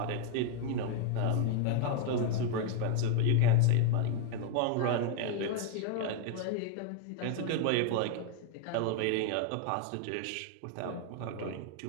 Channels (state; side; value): different; both; correlation 0.00